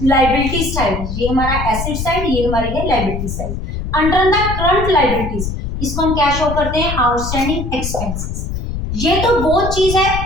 लाइबिलिटी साइड, ये हमारा एसेट साइड, ये हमारी है liability side. Under the current liabilities, इसको हम क्या शो करते हैं, आउटस्टैंडिंग एक्सपेंसेस। ये तो वो चीज है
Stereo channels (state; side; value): noise; left; rumble, 5 dB below the sound